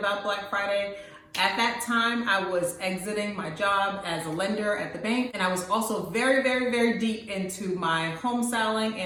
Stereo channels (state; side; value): identical; both; correlation 1.00